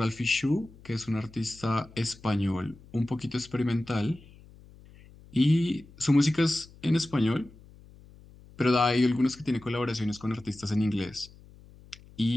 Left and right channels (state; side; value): noise; left; hum, 23 dB below the sound